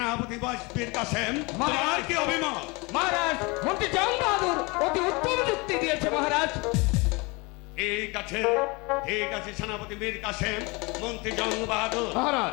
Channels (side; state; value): right; quieter; 26.6 dB